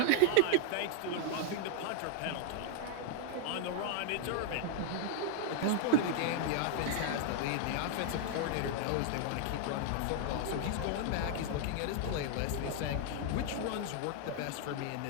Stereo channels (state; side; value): different; both; correlation 0.00